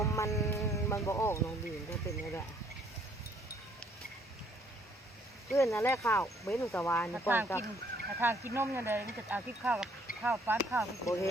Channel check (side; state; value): both; normal; correlation 0.65